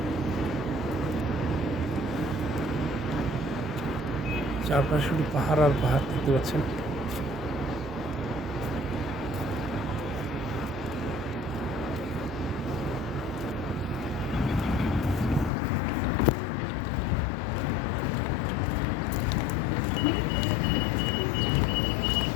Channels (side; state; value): right; drops out; at 15.5 s